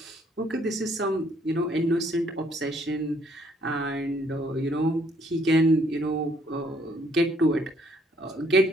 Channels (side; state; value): both; normal; correlation 0.66